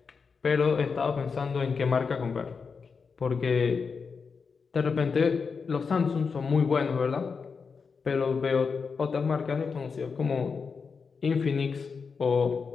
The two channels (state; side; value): quieter; right; 5.3 dB